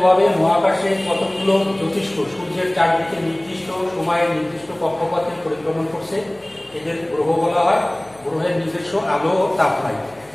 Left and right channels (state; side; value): noise; left; hum, 30 dB below the sound